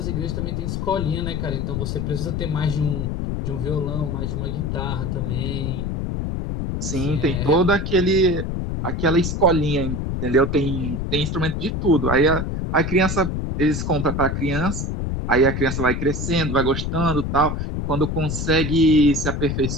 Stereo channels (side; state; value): left; noise; rumble, 2 dB below the sound